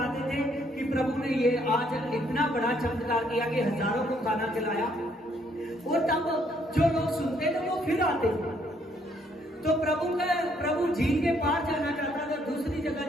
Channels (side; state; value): both; normal; correlation 0.69